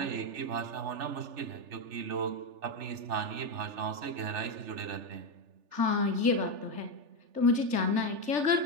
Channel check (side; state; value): left; late; 3.4 ms